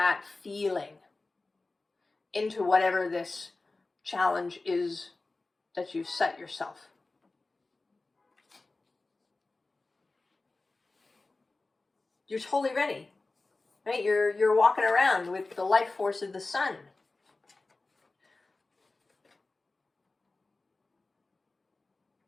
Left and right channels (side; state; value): right; quieter; 3.4 dB